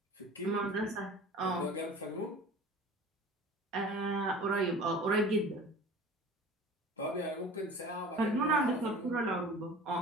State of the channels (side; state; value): both; normal; correlation 0.41